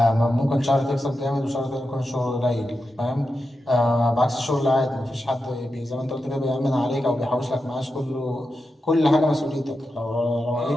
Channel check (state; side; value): normal; both; correlation 0.89